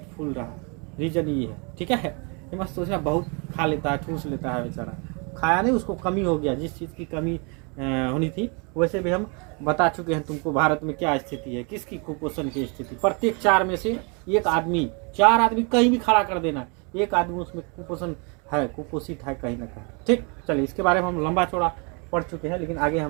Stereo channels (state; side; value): quieter; left; 33.7 dB